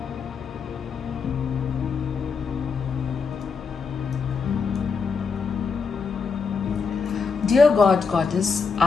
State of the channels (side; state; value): right; quieter; 5.3 dB